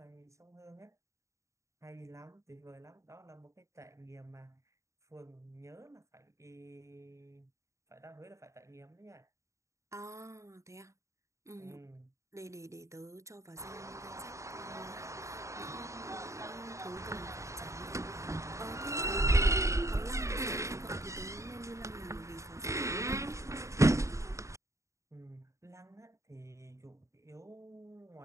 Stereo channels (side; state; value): left; late; 0.15 ms